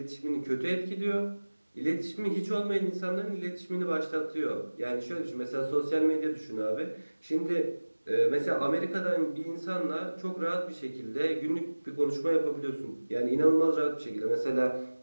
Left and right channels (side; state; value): both; inverted; correlation -1.00